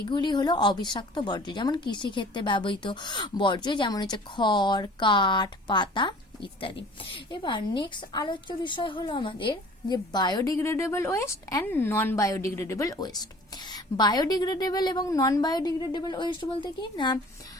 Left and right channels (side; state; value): both; normal; correlation 0.48